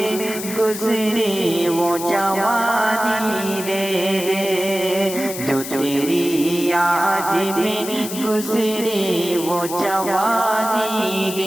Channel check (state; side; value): noise; left; hiss, 9 dB below the sound